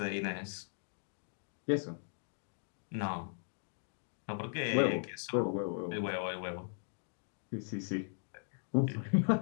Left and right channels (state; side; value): silent; right; digital silence